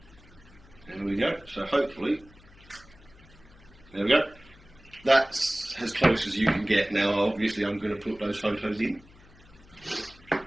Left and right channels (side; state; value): left; noise; hum, 24 dB below the sound